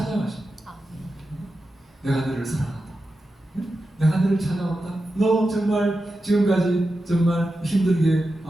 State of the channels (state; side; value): normal; both; correlation 0.91